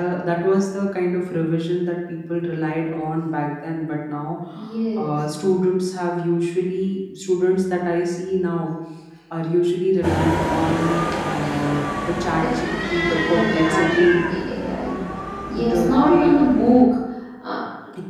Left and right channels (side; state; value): both; identical; correlation 1.00